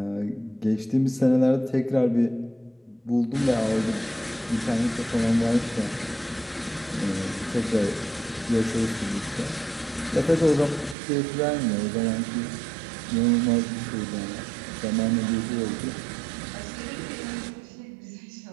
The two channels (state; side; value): drops out; left; at 11.0 s